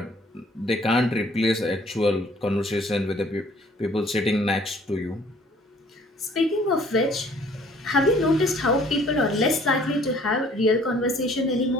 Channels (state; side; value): normal; both; correlation 0.57